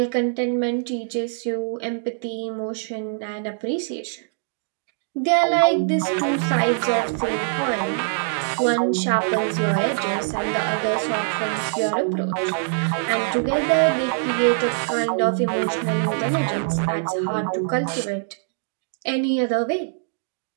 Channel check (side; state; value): left; silent; digital silence